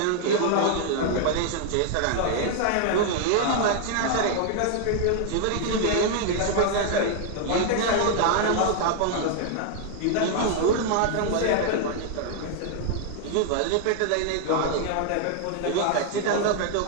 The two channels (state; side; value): different; both; correlation 0.00